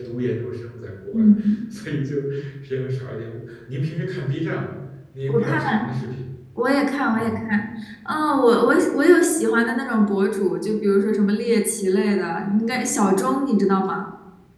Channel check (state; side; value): identical; both; correlation 1.00